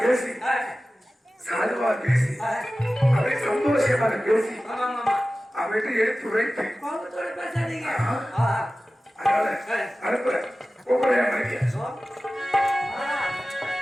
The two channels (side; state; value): both; normal; correlation 0.96